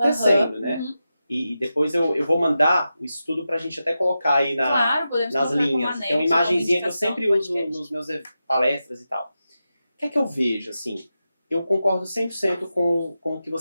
né? E depois eu vou mandar o estudo pra gente até colocar aí Claro, podemos nas colocar linhas. como Tem uma anexo, como imagenzinha que eu indicação sempre do uso podcast. nos meus palestras e tal. O que é que eu vejo, assim? eu concordo 100% com o que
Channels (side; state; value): both; inverted; correlation -0.91